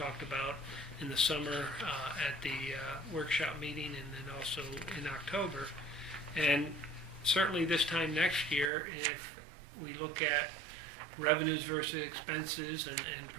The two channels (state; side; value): drops out; left; at 8.7 s